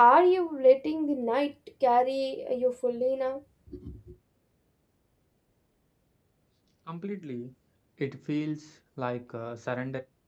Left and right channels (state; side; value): identical; both; correlation 1.00